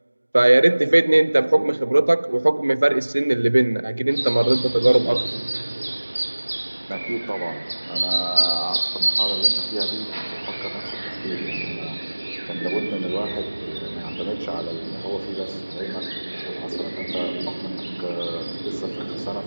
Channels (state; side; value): inverted; both; correlation -1.00